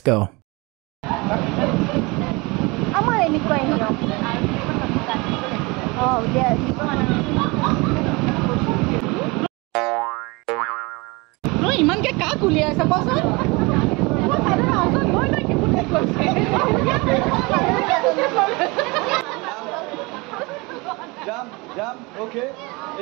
go. আমাৰ এনেকুৱাই নিয়ম ইমানকে কাক উলিয়াইছে কচোন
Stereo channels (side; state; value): left; quieter; 25.8 dB